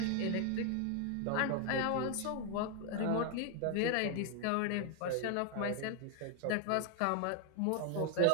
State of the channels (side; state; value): both; different; correlation 0.01